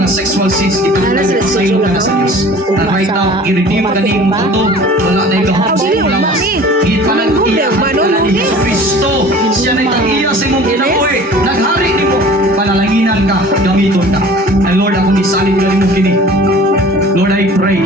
sexual sins, ipagpasaylo ka na sa Diyos. And right now, i-redeem ka ni mong ito, wala na ikahapon mo lawas. Ipanag-iya ka na ni Jesus Cristo. Siya na itang-iya sa imong kinabuhi. Naghari ni mo, panalanginan ka, gamiton ka. And Lord, ako nisalin ka rin mo kini. Lord, I pray,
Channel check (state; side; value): normal; both; correlation 0.45